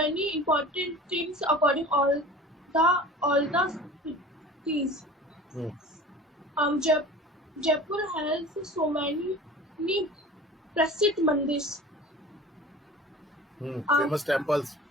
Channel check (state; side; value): normal; both; correlation 0.40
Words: important things according all the cities. Jaipur has so many प्रसिद्ध मंदिर. Famous temples.